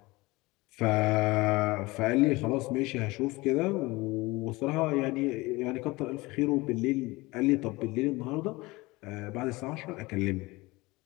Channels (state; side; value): quieter; right; 22.1 dB